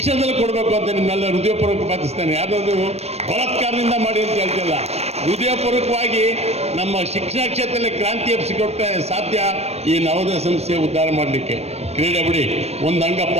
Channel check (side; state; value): left; late; 0.31 ms